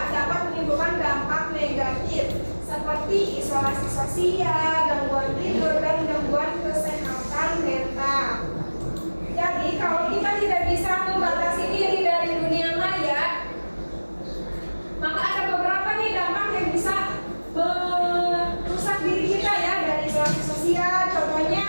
dapat menimbulkan dampak negatif seperti isolasi sosial, gangguan tidur, dan gangguan kesehatan mental. Jadi kalau kita tidak bisa membatasi diri dari dunia maya, maka ada beberapa nih dampak yang bisa merusak diri kita ya, dari isolasi sosial.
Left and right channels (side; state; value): both; inverted; correlation -1.00